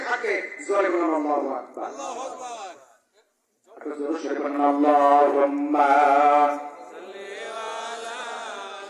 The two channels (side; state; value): both; identical; correlation 1.00